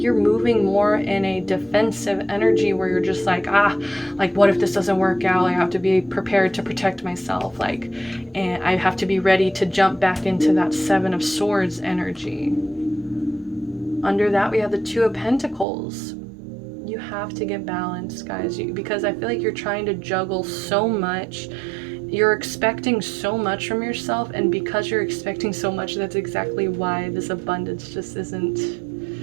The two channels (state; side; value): drops out; left; at 15.7 s